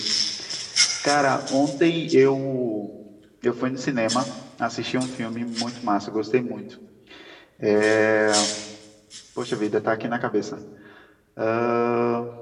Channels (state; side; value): identical; both; correlation 1.00